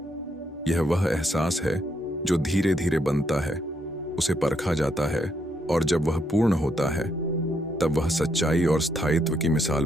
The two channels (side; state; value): both; normal; correlation 0.76